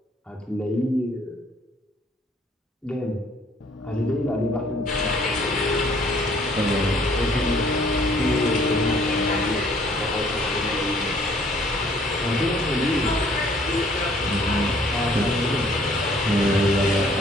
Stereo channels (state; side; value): normal; both; correlation 0.60